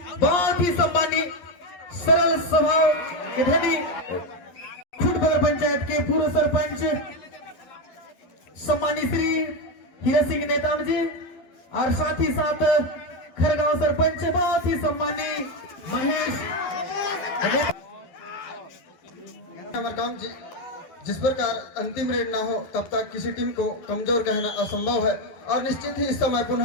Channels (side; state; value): right; late; 12 ms